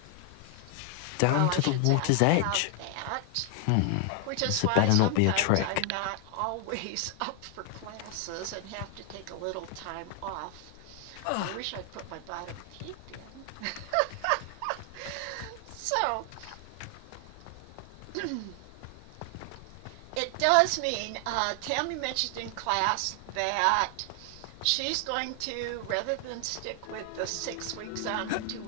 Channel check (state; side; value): different; both; correlation 0.00